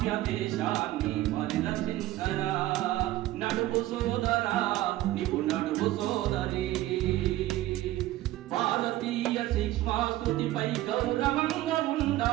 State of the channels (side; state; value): left; quieter; 15.8 dB